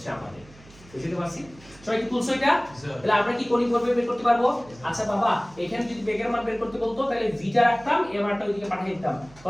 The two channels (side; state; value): right; noise; hum, 23 dB below the sound